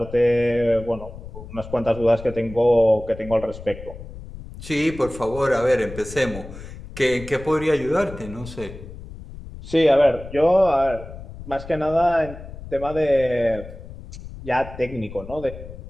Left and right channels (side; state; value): left; noise; rumble, 14 dB below the sound